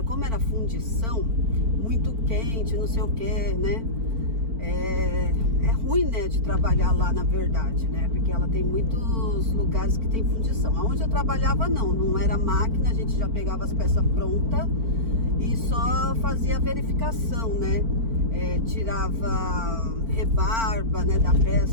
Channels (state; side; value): late; left; 4.4 ms